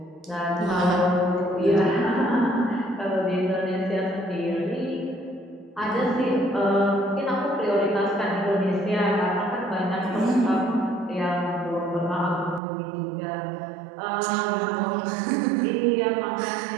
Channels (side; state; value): left; drops out; at 12.6 s